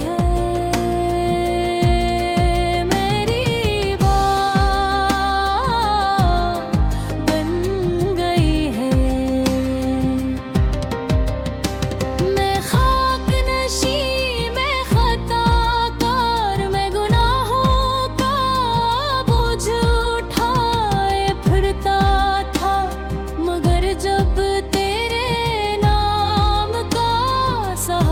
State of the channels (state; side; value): identical; both; correlation 1.00